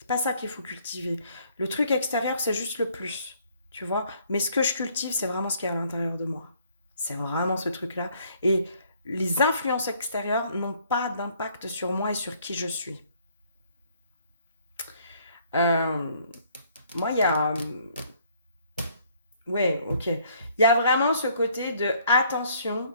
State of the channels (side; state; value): both; inverted; correlation -0.63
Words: pas ça qu'il faut cultiver. Le truc extérieur, c'est juste le plus, tu vois. Mais ce que je cultive, c'est vraiment ce qui est à l'intérieur de moi. C'est vraiment ce truc-là. Et les influences extérieures n'ont pas d'impact sur moi et sur qui je suis. Euh, moi, il y a... Ouais, ok. Il y a vraiment ce côté de attention,